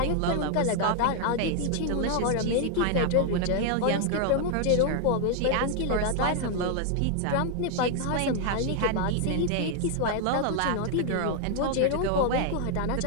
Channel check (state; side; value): different; both; correlation 0.00